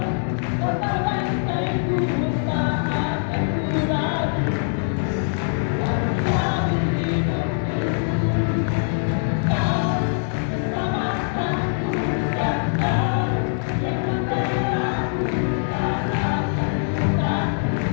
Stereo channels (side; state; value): right; silent; digital silence